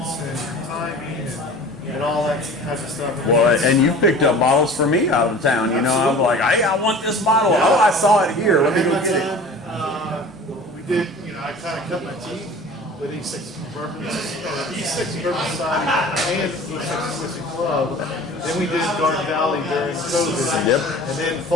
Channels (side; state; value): both; normal; correlation 0.42